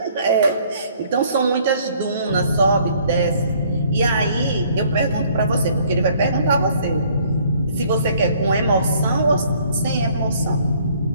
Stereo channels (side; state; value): both; inverted; correlation -0.60